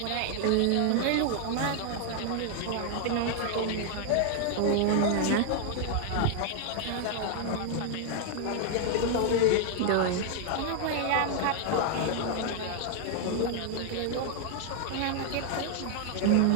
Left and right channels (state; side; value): different; both; correlation 0.00